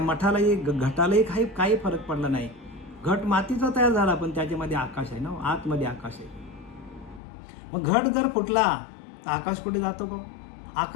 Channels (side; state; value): right; drops out; at 7.2 s